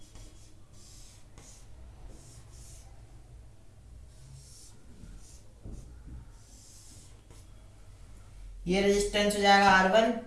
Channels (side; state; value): both; identical; correlation 1.00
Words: ये रेजिस्टेंस हो जाएगा R1,